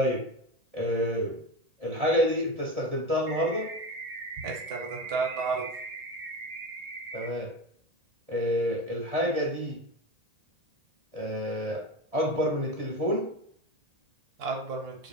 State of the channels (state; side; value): late; left; 1.8 ms